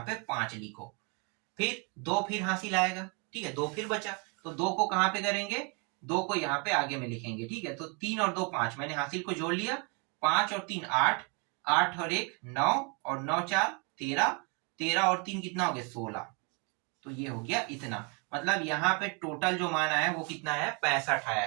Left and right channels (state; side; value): quieter; left; 32.3 dB